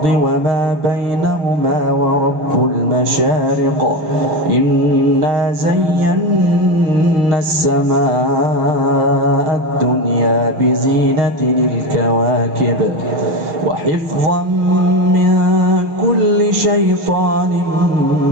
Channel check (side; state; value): left; late; 6.4 ms